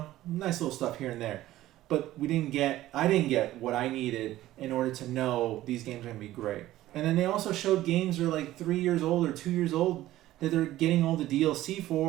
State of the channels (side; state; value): left; quieter; 15.0 dB